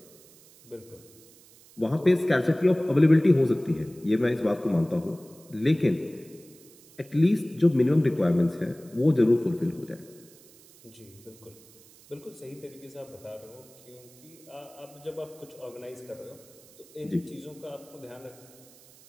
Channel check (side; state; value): right; noise; hiss, 25 dB below the sound